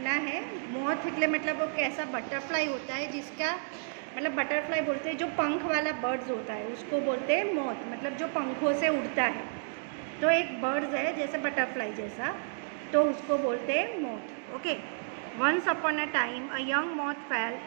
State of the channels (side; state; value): left; silent; digital silence